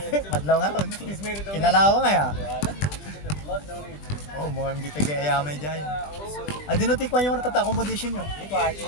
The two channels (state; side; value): late; right; 20 ms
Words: Madlaw nga ron. Kinalawa nga ya. Oh, mga hindi tagayamay dyan. Ah, dinutikwan yung ratata accommodation nyo.